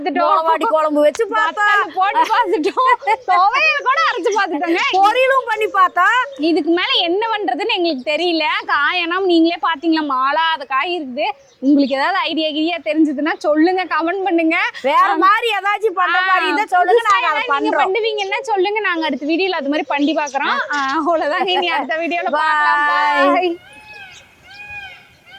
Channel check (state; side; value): identical; both; correlation 1.00